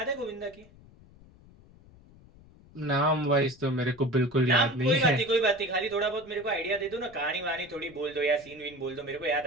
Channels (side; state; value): left; noise; rumble, 24 dB below the sound